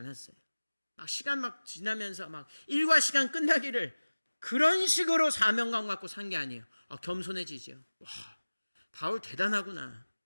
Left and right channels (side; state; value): both; inverted; correlation -1.00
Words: 시간 막 지나면서 막 일과 시간 끝나기를 그런 식으로 사명감 갖고 산 게 아니에요. 겸손해지죠. 와, 바울 대단하구나.